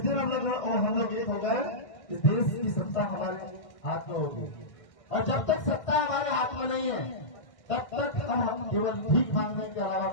दिन हम लोग एक हो गए, इस देश की सत्ता हमारे हाथ में होगी। और जब तक सत्ता हमारे हाथ में नहीं है तब तक हम केवल भीख मांगने के अलावा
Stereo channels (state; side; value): late; right; 1.6 ms